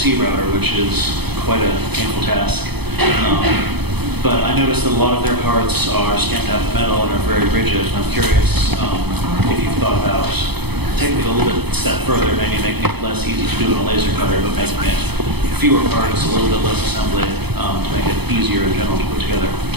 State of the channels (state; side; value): late; left; 0.98 ms